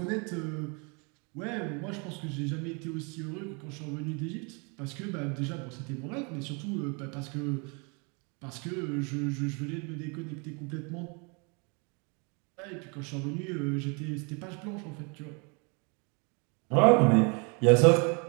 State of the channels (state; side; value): quieter; left; 33.2 dB